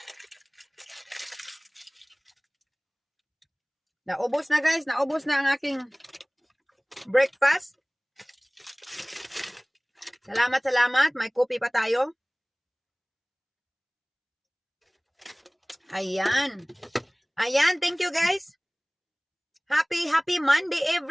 Naubos na, guys. Naubos na ang aking breakfast. Salamat. May kopi pa tayo. Ayan. Thank you, guys. Happy Monday,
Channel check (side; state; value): both; identical; correlation 1.00